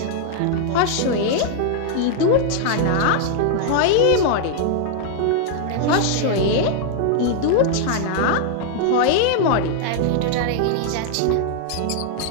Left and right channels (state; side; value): different; both; correlation 0.00